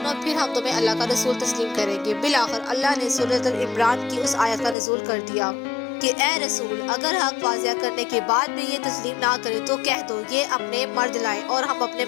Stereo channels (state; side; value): drops out; right; at 4.8 s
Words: फिर हम तुम्हें अल्लाह का रसूल तस्लीम करेंगे। बिलाखिर अल्लाह ने सूरत अल इमरान की उस आयत का नज़ूल कर दिया कि ए रसूल, अगर हक वाज़िया करने के बाद भी ये तस्लीम ना करे तो कह दो, ये अपने मर्द लाएं और हम अपने